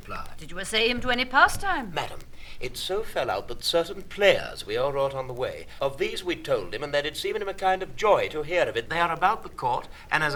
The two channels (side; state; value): both; identical; correlation 1.00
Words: Did you essay him to any pastime? Madam, it so fell out that certain players we all wrought on the way, of these we told him, and that it's even him a kind of joy to hear of it. They are about the court, and as